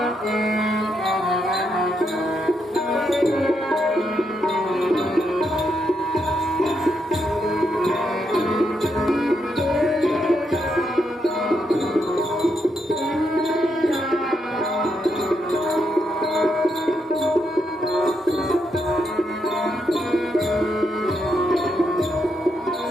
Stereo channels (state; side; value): normal; both; correlation 0.80